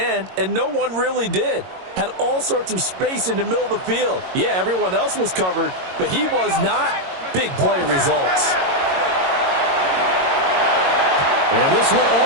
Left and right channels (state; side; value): late; left; 22 ms